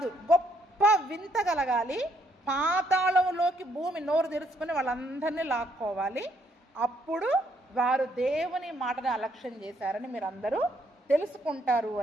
గొప్ప వింత కలగాలి. పాతాళంలోకి భూమి నోరు తెరుచుకొని వాళ్ళందరినీ లాక్కోవాలి. అప్పుడు వారు దేవుని మాటని అలక్ష్యం చేశారని మీరు అందరూ తెలుసుకుంటారు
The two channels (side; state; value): both; normal; correlation 0.71